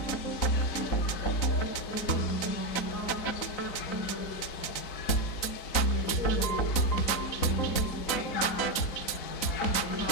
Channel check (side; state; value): right; late; 4.0 ms